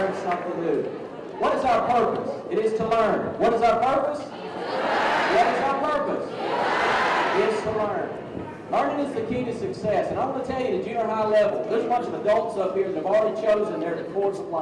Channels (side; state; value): both; identical; correlation 1.00